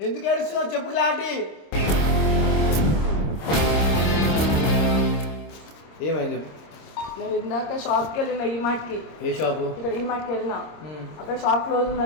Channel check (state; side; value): late; right; 26 ms